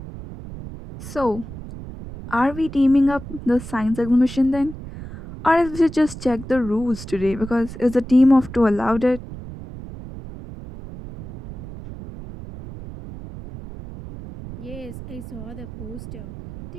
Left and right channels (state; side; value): noise; right; rumble, 12 dB below the sound